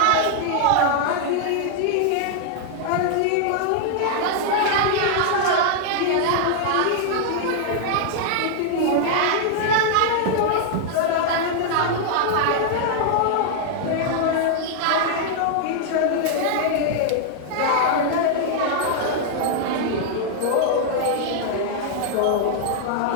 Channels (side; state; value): both; different; correlation -0.01